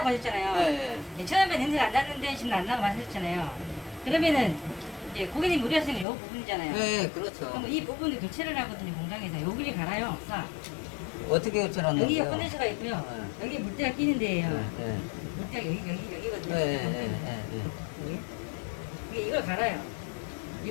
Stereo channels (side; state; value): right; drops out; at 6.1 s